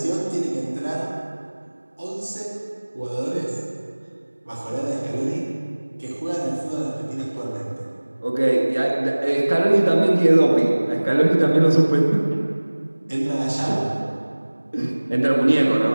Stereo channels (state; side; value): inverted; both; correlation -1.00